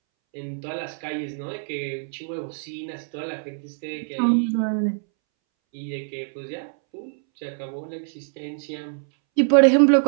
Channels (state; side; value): silent; left; 62 dB below the other